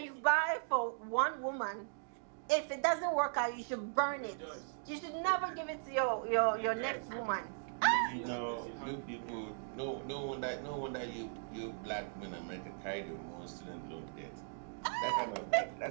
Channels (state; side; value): silent; left; digital silence